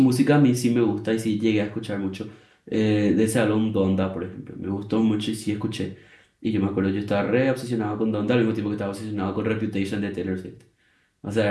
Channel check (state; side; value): identical; both; correlation 1.00